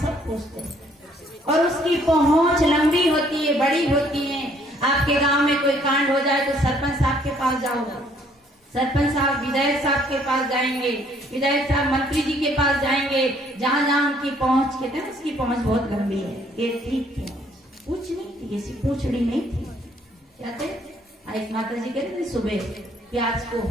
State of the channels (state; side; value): normal; both; correlation 0.63